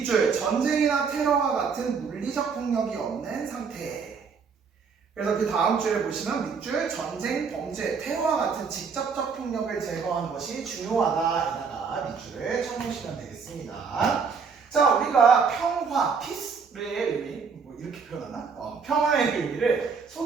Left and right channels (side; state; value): left; quieter; 5.6 dB